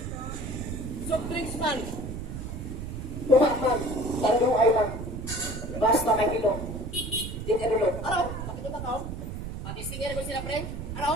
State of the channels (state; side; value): noise; right; rumble, 7 dB below the sound